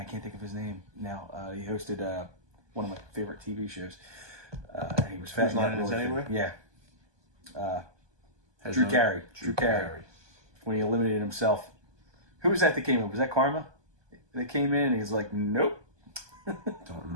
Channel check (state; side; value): late; left; 1.2 ms